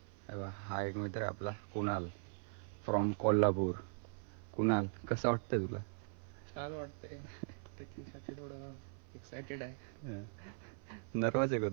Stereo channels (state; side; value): silent; left; 51 dB below the other